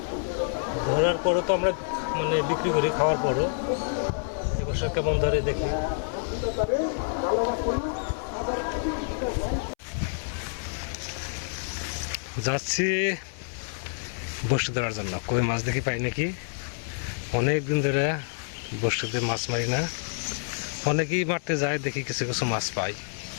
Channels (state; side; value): silent; right; 60 dB below the other